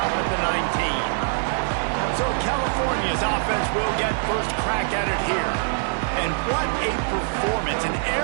at the 19. So California's offense will get first crack at it here. And what a performance, an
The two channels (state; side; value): silent; left; 62 dB below the other